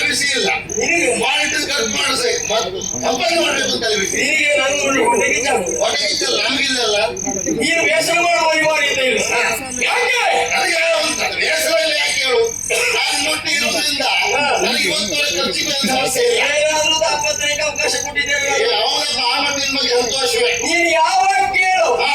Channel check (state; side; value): identical; both; correlation 1.00